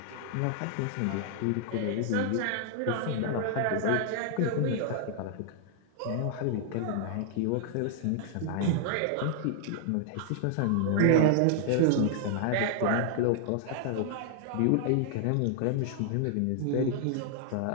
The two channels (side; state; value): both; different; correlation 0.00